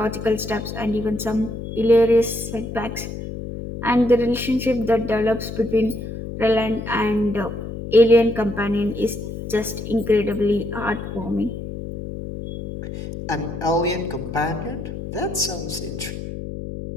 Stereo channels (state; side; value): noise; left; hum, 8 dB below the sound